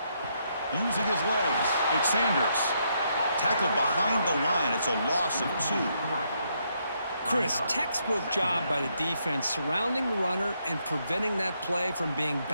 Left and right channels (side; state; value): both; inverted; correlation -0.76